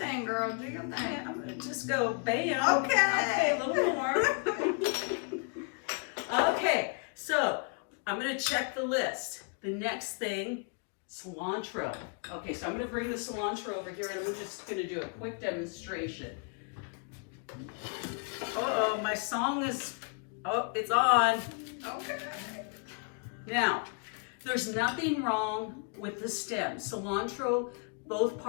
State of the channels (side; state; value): right; quieter; 38.9 dB